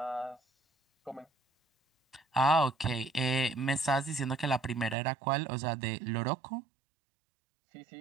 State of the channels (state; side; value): drops out; left; at 5.0 s